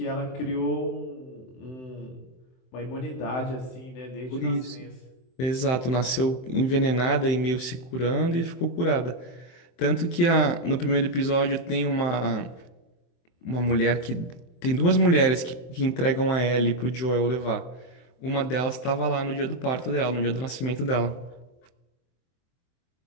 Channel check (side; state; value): right; late; 23 ms